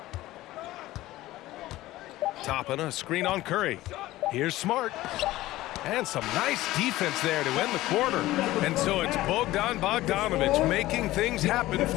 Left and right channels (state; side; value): quieter; right; 16.7 dB